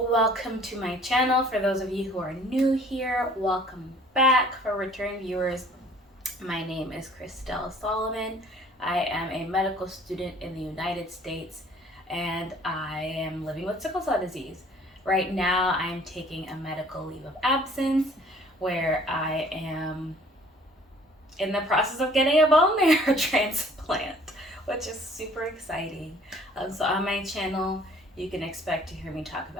to my channel. For those of you who are new here, welcome back. For return viewers, my name is Christelle Salomon. I am a medical student in the United States and I am living with sickle cell disease. Right now I'm taking a medical leave of absence where I am in the process of getting a bone marrow transplant, which is super exciting. So on my channel, you can expect to hear me talk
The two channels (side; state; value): both; normal; correlation 0.54